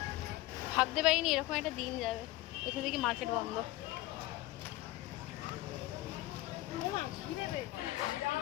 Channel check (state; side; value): quieter; right; 17.8 dB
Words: ভাবতে পারিনি এরকম একটা দিন যাবে। এখান থেকে মার্কেট বন্ধ।